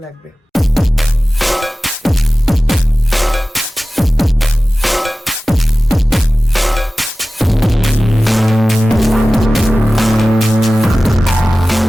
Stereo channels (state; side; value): normal; both; correlation 0.96